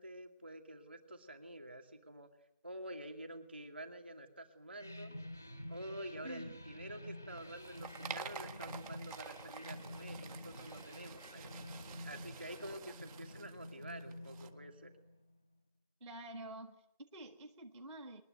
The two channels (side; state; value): both; inverted; correlation -0.59